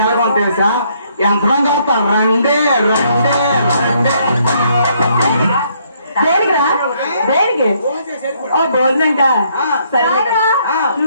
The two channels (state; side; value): inverted; both; correlation -0.69